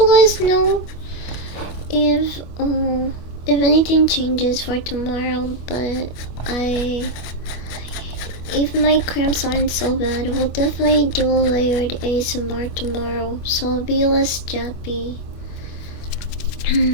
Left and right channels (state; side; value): late; right; 25 ms